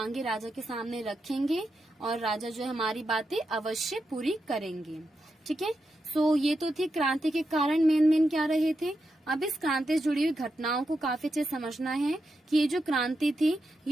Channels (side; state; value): both; normal; correlation 0.86